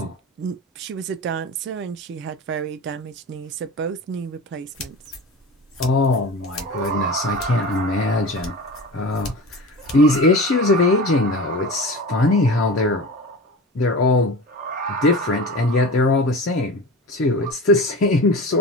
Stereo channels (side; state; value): both; normal; correlation 0.32